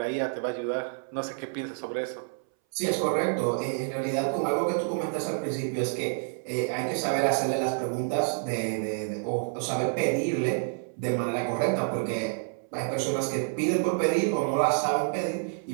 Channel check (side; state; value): left; silent; 59 dB below the other